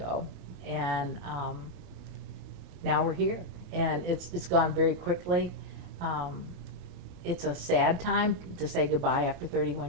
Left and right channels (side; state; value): left; late; 28 ms